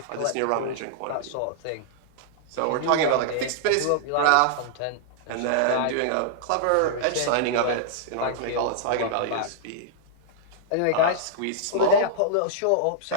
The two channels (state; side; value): different; both; correlation -0.01